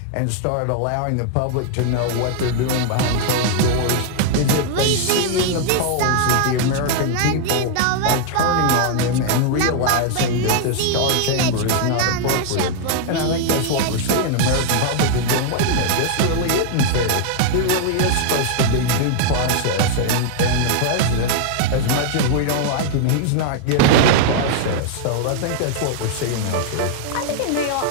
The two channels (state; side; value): different; both; correlation 0.00